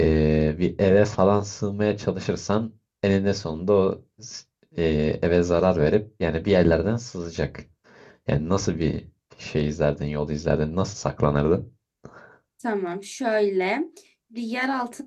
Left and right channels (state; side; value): identical; both; correlation 1.00